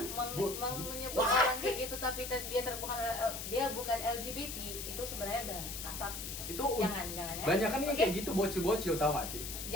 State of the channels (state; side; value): noise; left; hiss, 6 dB below the sound